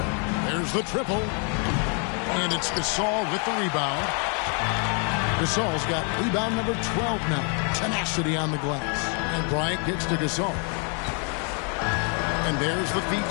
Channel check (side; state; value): right; quieter; 39.2 dB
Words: There's the triple. And it's Gasol with the rebound. Gasol's got rebound number 12 now. Tenacity on the glass. And Bryant gets to Gasol. And there's the feed